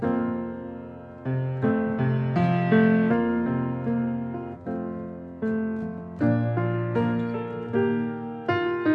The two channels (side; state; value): both; identical; correlation 1.00